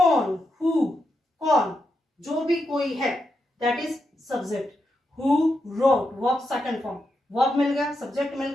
हु, कौन, जो भी कोई है, that is subject. Who wrote, verb second form, verb मिल गया, सब्जेक्ट मिल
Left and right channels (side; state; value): both; normal; correlation 0.85